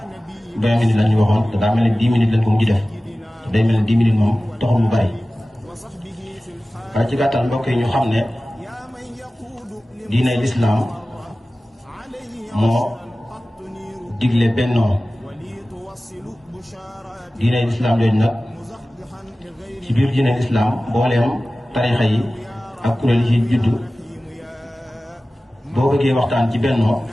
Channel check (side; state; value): both; normal; correlation 0.96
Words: 20 minutes lañ ñu waxoon te daa mel ne 10 minutes lañ ko mujj def te day mel ne 10 minutes moom taxul mu bari. waaye ci gàttal mbokk yi ñu xam ne diinay lislaam moo digle bennoo. diinay lislaam jooju nag, ci biir diinay lislaam mbooleem tarixa yi ak kuréel yi ci juddu, boo bëggee waxtaan ci bennoo